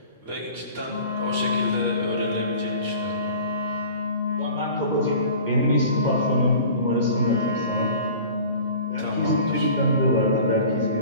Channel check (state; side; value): inverted; both; correlation -0.43